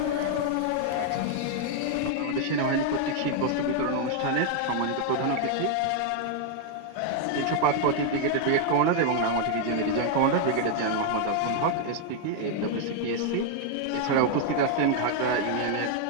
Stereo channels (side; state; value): both; different; correlation 0.00